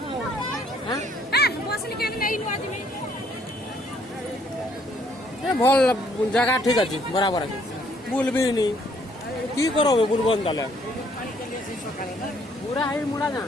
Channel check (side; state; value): both; normal; correlation 0.65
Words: भल जगह ठीक अच्छे बराबर अच्छे बुल भी नहीं की करो बुलबन ताले पूरा हाई मुड़ा ना